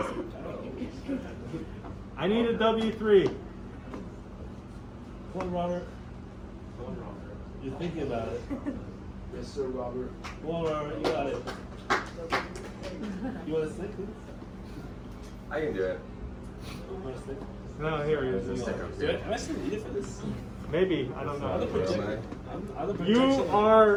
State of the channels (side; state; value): both; identical; correlation 1.00